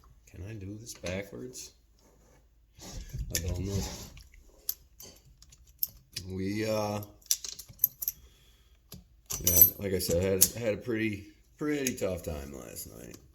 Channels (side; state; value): both; identical; correlation 1.00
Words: can I do this backwards? I don't know. Yeah, like I said, I had a pretty tough time last night.